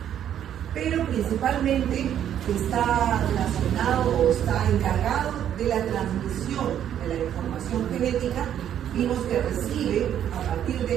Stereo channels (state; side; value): quieter; left; 10.1 dB